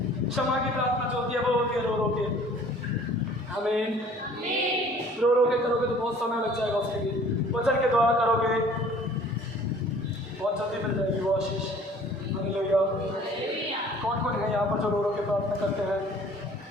क्षमा की प्रार्थना जो होती है वो होती है रो रो के। आमीन। रो रो के करोगे तो बहुत समय लग जाएगा उसके लिए। वचन के द्वारा करोगे बहुत जल्दी मिल जाएगी वो आशीष। हालेलुया। कौन कौन है यहाँ पर जो रो रो के प्रार्थना करते हैं?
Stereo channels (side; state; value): both; normal; correlation 0.51